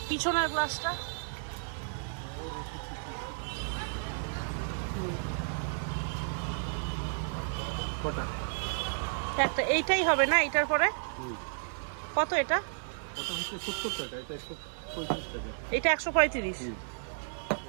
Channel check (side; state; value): left; silent; 56 dB below the other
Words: পিছনের গ্লাসটা। একটা এইটাই হবে না? এইটার পরে কত? এটা এটা 135।